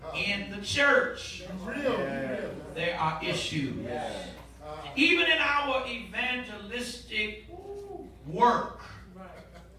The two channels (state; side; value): identical; both; correlation 1.00